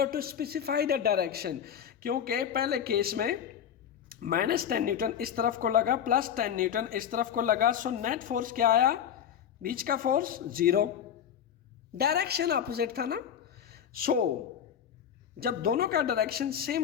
to specify the direction. क्योंकि पहले केस में -10 न्यूटन इस तरफ को लगा प्लस 10 न्यूटन इस तरफ को लगा, सो नेट फोर्स क्या आया? बीच का फोर्स 0, डायरेक्शन अपोजिट था ना। सो जब दोनों का डायरेक्शन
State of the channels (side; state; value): right; quieter; 9.0 dB